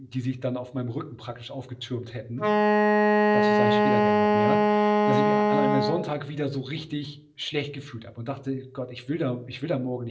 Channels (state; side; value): identical; both; correlation 1.00